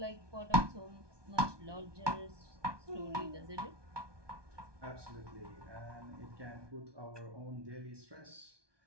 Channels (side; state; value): left; late; 1.2 ms